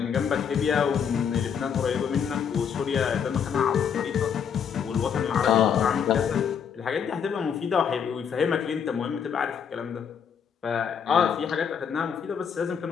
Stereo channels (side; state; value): right; quieter; 7.5 dB